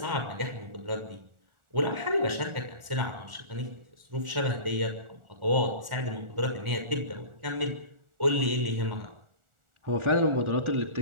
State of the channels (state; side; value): late; left; 1.4 ms